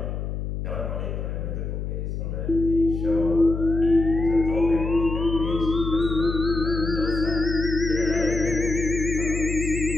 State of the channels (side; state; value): left; noise; hum, 4 dB below the sound